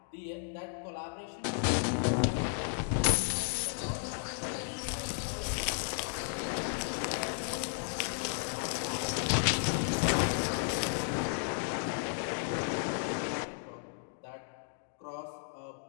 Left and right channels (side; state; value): right; silent; digital silence